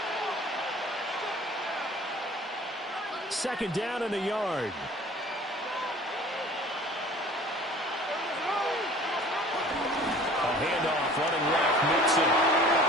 Second down in the yard. A handoff, running left, Mixon.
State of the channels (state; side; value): normal; both; correlation 0.47